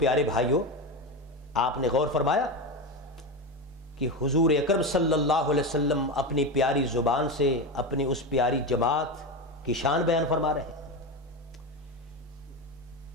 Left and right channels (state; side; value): normal; both; correlation 0.18